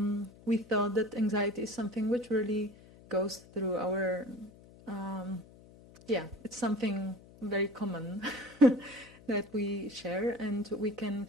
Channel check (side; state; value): left; noise; hum, 22 dB below the sound